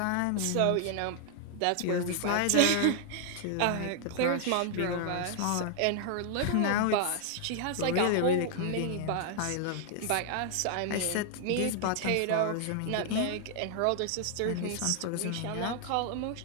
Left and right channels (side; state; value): both; different; correlation 0.00